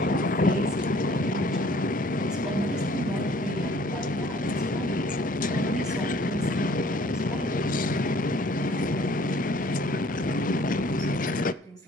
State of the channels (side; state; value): both; normal; correlation 0.55